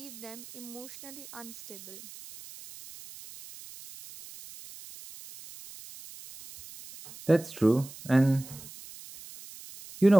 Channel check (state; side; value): noise; right; hiss, 17 dB below the sound